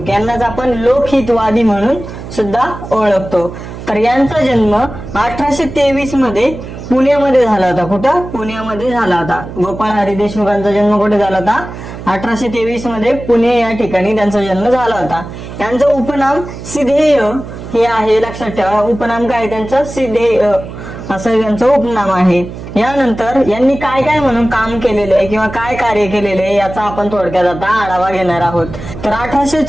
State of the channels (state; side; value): noise; right; hum, 11 dB below the sound